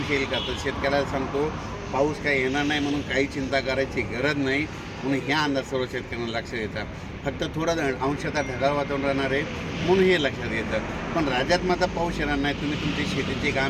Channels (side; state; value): both; identical; correlation 1.00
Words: येईल का. तर शेतकऱ्याला सांगतो पाऊस काही येणार नाही, म्हणून काही चिंता करायची गरज नाही, म्हणून ह्या अंदाज सर्व शेतकऱ्यांना लक्षात येतात. फक्त थोडं अंशतः ढगाळ वातावरण राहणार आहे, म्हणून हे लक्षात येतं. पण राज्यात मात्र पाऊस येणार नाही. तुम्ही तुमची शेतीची